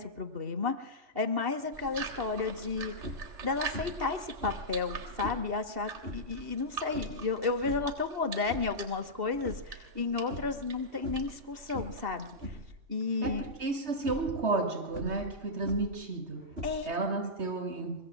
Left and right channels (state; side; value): late; left; 2.7 ms